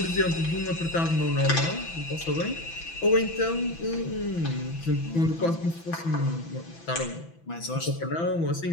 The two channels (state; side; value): late; right; 6.0 ms